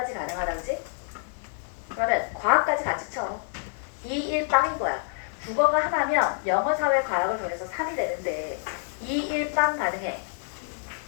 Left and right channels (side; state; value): right; silent; digital silence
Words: 가능하다지? 그러면 과학까지 같이 쳐. 2, 1 빵인 거야. 국어가 하나면 영어, 사회, 과학을 더해서 3이 되는데 2, 1 빵 가능해.